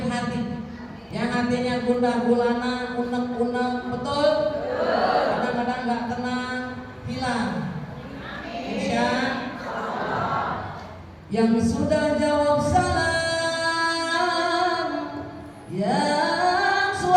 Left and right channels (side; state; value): both; identical; correlation 1.00